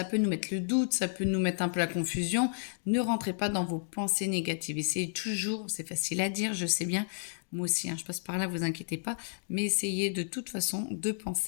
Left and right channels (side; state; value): right; silent; digital silence